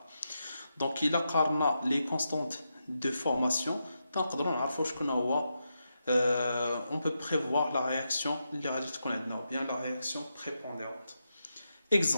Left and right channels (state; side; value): inverted; both; correlation -0.86